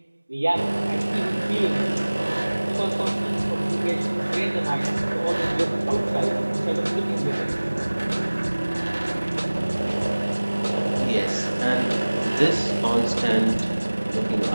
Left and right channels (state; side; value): inverted; both; correlation -1.00